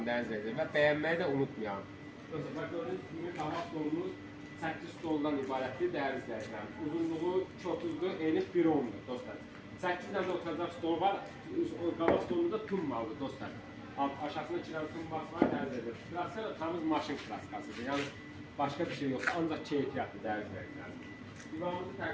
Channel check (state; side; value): identical; both; correlation 1.00